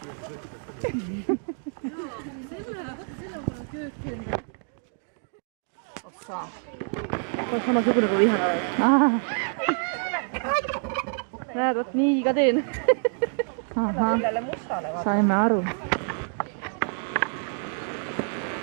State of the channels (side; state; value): left; silent; 55 dB below the other